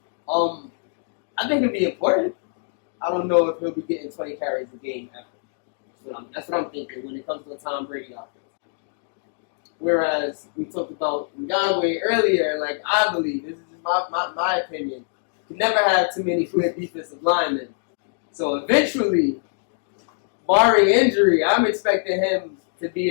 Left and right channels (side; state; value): right; silent; digital silence